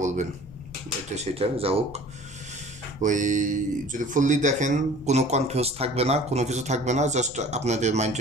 বলবেন, এটা সেটা যা হোক। ওই যদি ফুললি দেখেন কোনো কনফিউজ থাকবে না, কোনো কিছু থাকবে না, জাস্ট আপনাদের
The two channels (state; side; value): noise; left; rumble, 18 dB below the sound